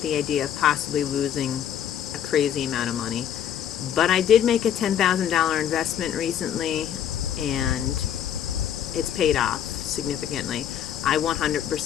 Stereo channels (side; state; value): right; quieter; 9.7 dB